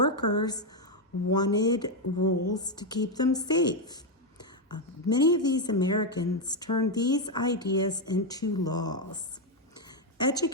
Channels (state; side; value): normal; both; correlation 0.04